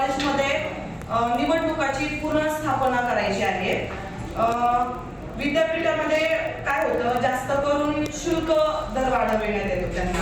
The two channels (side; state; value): both; identical; correlation 1.00